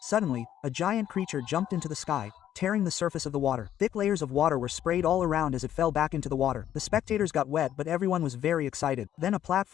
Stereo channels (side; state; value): right; quieter; 11.0 dB